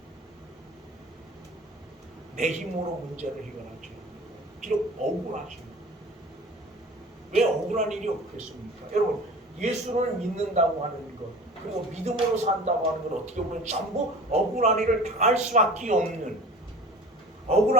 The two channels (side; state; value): both; normal; correlation 0.41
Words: 내 힘으로 문제를 해결하지. 비록 억울하지. 왜 억울한 일이 없겠습니까? 여러분, 예수를 믿는다고 하는 것, 그리고 믿음으로 산다고 하는 것, 어떻게 보면 전부 억울한 일을 당할 수밖에 없는,